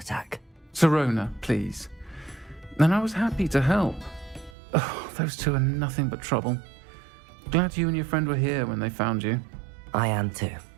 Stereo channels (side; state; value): left; drops out; at 4.5 s